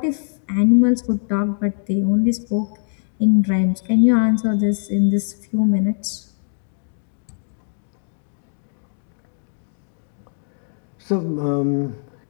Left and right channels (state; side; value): silent; right; digital silence